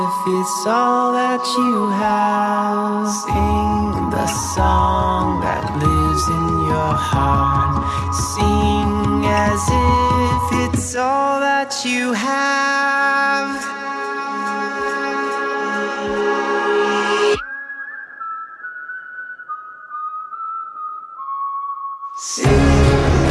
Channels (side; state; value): both; identical; correlation 1.00